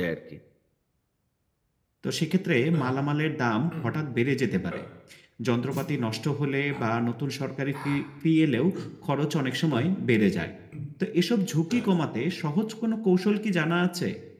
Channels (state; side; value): identical; both; correlation 1.00